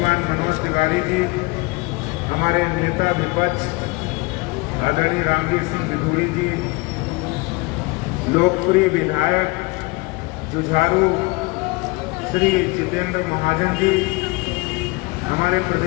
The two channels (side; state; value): right; quieter; 25.8 dB